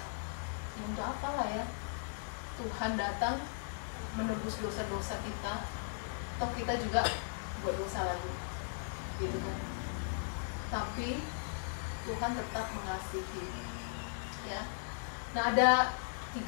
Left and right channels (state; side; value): silent; right; 53 dB below the other